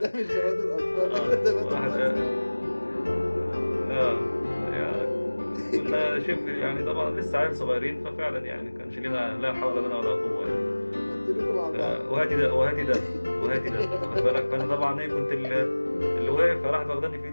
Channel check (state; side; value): inverted; both; correlation -1.00